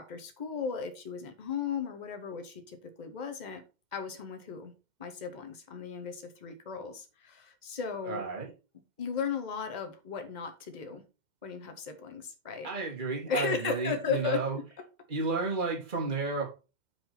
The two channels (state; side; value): late; left; 2.1 ms